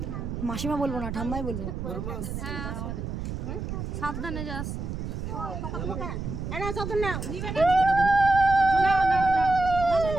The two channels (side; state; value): right; noise; rumble, 5 dB below the sound